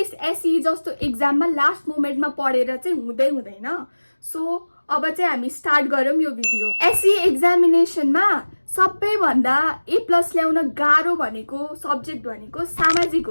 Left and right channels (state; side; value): inverted; both; correlation -1.00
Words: एसई जस्तो एक्जाममा लास्ट मोमेन्टमा पढेर चाहिँ हुँदैन। सो अब चाहिँ हामी स्टार्ट गरौँ यो भिडियो। एसई एक्जामिनेसनमा सबैभन्दा A+ ल्याउन गाह्रो भनेको सब्जेक्ट भनेको सामाजिक